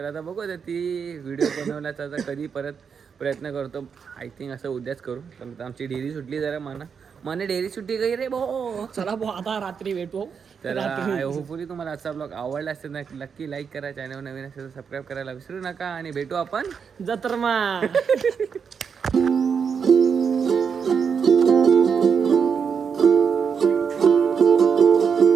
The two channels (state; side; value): quieter; left; 6.5 dB